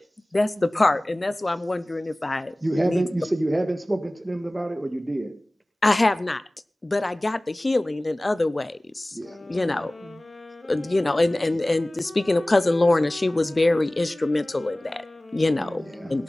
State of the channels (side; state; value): both; normal; correlation 0.98